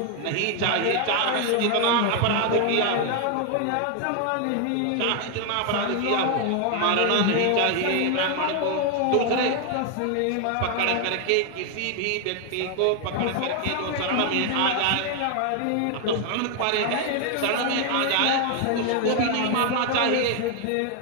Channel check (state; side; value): different; both; correlation 0.00